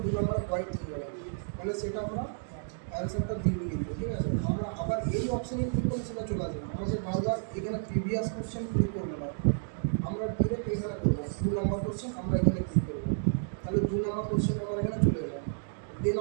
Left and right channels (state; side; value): silent; left; digital silence